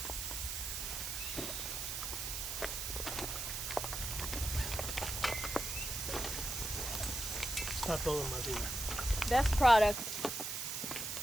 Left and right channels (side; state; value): right; noise; hiss, 3 dB below the sound